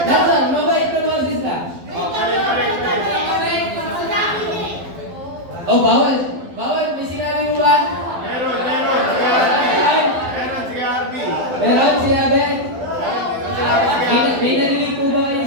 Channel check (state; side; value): late; left; 12 ms